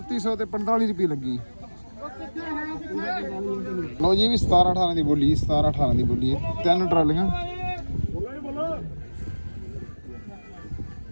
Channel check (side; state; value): both; inverted; correlation -1.00